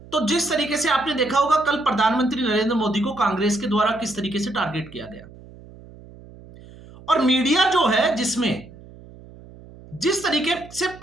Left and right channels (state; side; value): noise; right; hum, 20 dB below the sound